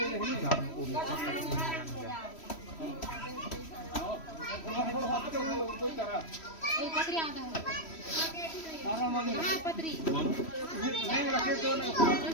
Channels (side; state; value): right; late; 3.1 ms